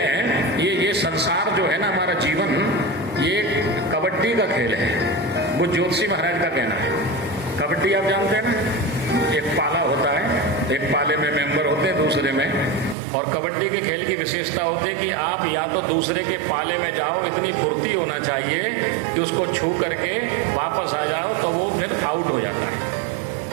ये संसार जो है ना हमारा जीवन, ये कबड्डी का खेल है, वो ज्योतिषी महाराज का कहना है। कबड्डी आप जानते हैं ना, एक पाला होता है, एक पाले में मेंबर होते हैं दूसरे में, और कबड्डी के खेल की विशेषता होती है कि आप या तो दूसरे के पाले में जाओ, इतनी फुर्ती होना चाहिए कि उसको छू करके वापस आ जाओ तो वो फिर आउट हो जाता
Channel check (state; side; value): drops out; left; at 13.0 s